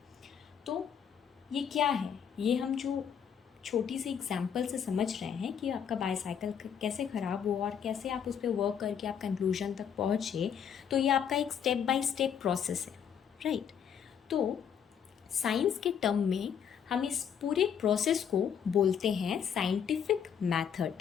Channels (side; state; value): right; quieter; 8.0 dB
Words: तो ये क्या है, ये हम जो छोटी सी एग्जाम्पल से समझ रहे हैं कि आपका बाईसाइकिल कैसे ख़राब हुआ और कैसे आप उस पर वर्क करके आप कंक्लूजन तक पहुँचे। तो ये आपका एक स्टेप बाय स्टेप प्रोसेस है, राइट। तो साइंस के टर्म में हम इस पूरे प्रोसेस को बोलते हैं साइंटिफिक